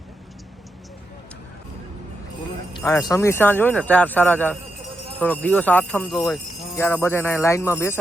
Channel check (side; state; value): both; normal; correlation 0.85